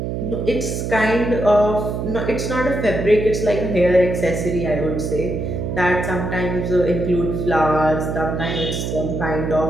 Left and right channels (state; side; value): noise; right; hum, 3 dB below the sound